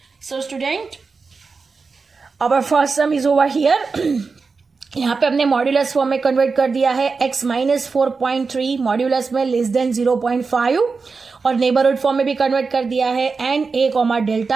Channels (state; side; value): quieter; left; 4.6 dB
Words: So student, our first sum is over here. यहाँ पे हमने मॉड्यूलस फॉर्म में कन्वर्ट कर दिया है x माइनस 4.3 मॉड्यूलस में लेस देन 0.5, और नेबरहुड फॉर्म में भी कन्वर्ट कर दिया है and a comma